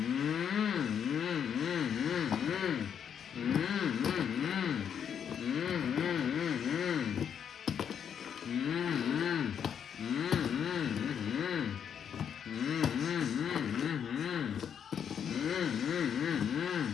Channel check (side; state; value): right; quieter; 8.1 dB